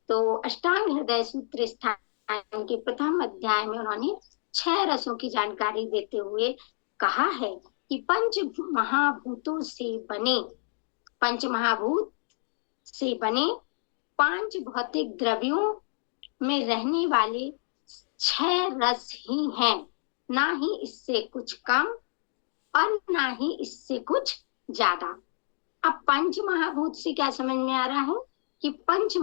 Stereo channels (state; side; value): silent; right; digital silence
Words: तो अष्टांग हृदय सूत्र स्थान के प्रथम अध्याय में उन्होंने 6 रसों की जानकारी देते हुए कहा है कि पंच महाभूतों से बने, पंच महाभूत से बने 5 भौतिक द्रव्यों में रहने वाले 6 रस ही हैं, ना ही इससे कुछ कम और ना ही इससे कुछ ज्यादा। अब पंच महाभूत से क्या समझ में आ रहा है कि पंच